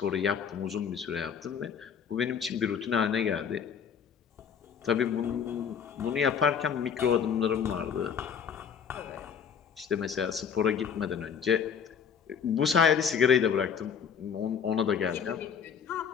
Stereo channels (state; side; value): quieter; right; 7.3 dB